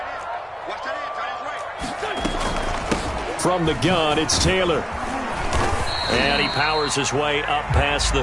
From the gun, it's Taylor. And he powers his way up past the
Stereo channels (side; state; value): both; identical; correlation 1.00